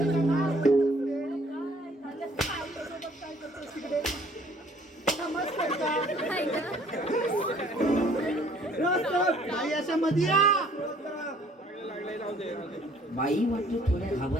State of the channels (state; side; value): normal; both; correlation 0.58